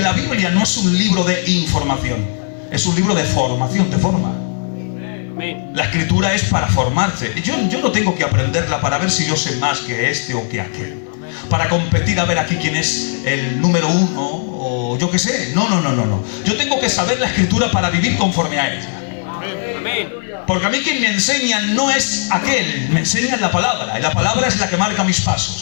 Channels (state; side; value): silent; right; 64 dB below the other